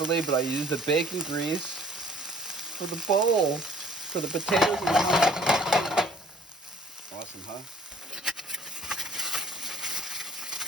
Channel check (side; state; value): both; normal; correlation 0.56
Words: but I use the bacon grease for the bowl, for the potatoes and the onions. Awesome, huh?